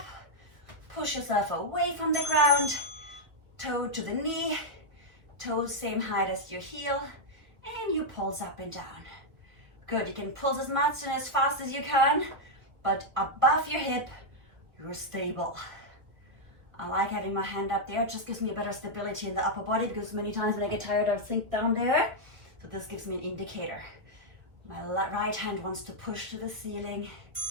push yourself away from the ground, toe to the knee, toes same height as your heel, and you pulse up and down. Good, you can pulse as much and as fast as you can, but above your hip, you're stable. I like having my hand up there, it just gives me a better stability in the upper body, because many times when I get tired, I sink down there. So this gives me an indicator. My right hand wants to push to the ceiling.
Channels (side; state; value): left; late; 1.5 ms